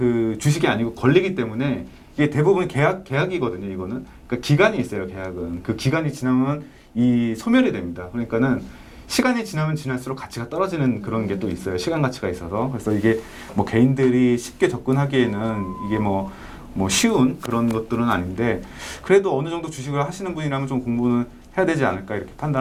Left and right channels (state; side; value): identical; both; correlation 1.00